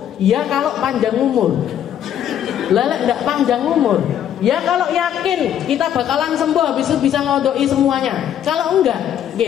ya kalau panjang umur. Lelek nggak panjang umur. Ya kalau yakin kita bakalan sembuh, habis itu bisa ngodoi semuanya. Kalau enggak,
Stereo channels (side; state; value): right; quieter; 10.1 dB